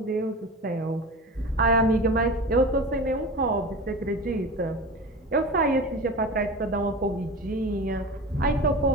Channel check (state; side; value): normal; both; correlation 0.32